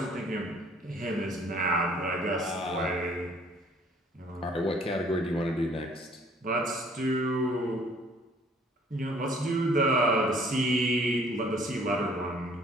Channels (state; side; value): normal; both; correlation 0.58